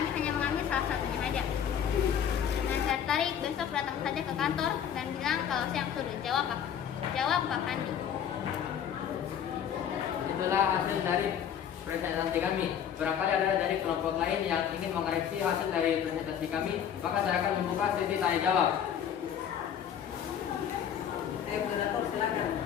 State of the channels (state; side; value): quieter; right; 8.9 dB